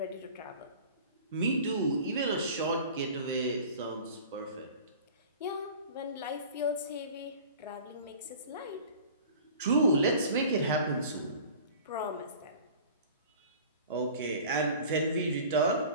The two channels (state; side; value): inverted; both; correlation -0.43